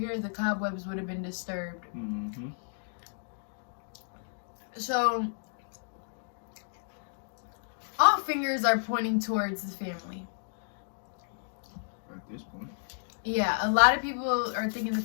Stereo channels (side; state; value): right; silent; digital silence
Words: the cobwebs would have been disturbed. Mm-hmm. So, all fingers are pointing towards the family. At this point. Yeah, a lot of people are thinking the